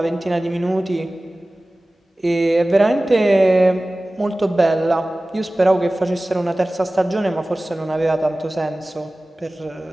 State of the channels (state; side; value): normal; both; correlation 0.97